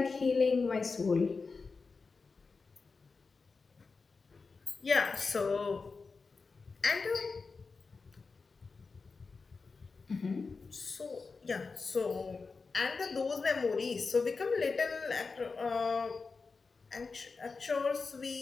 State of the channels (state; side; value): quieter; right; 4.5 dB